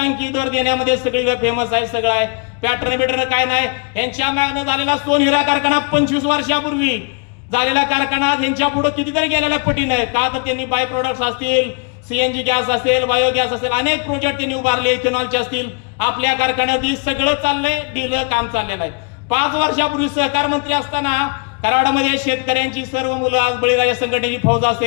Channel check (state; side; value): quieter; right; 36.8 dB